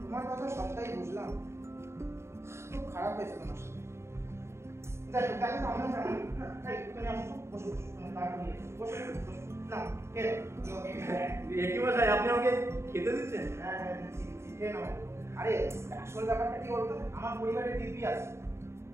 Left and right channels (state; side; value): late; left; 0.13 ms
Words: তোমার কথা সবটাই বুঝলাম। খুব খারাপ হয়েছে তোমার সাথে। দেখো দেখো আমরা জানি এই তুমি আসো, বসো বসো, তুমি তাড়াতাড়ি এসো, বসো বসো না খেয়ে একই মশাই, আপনি আমাকে খেতে দিচ্ছেন? হ্যাঁ হ্যাঁ দিচ্ছি দিচ্ছি, খেয়ে নাও। আরে আসল ব্যাপারটা কি বলতো, আমার পরিবারের দিব্যি আছে।